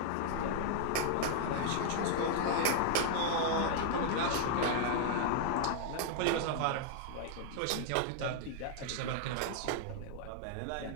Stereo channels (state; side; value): different; both; correlation 0.00